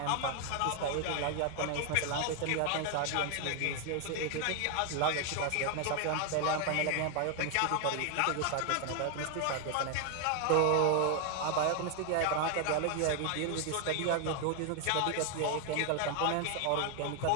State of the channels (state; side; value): different; both; correlation 0.00